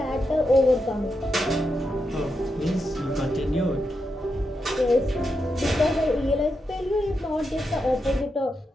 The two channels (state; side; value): normal; both; correlation 0.85